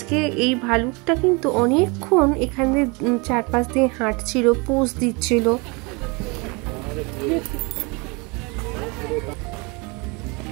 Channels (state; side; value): quieter; left; 28.8 dB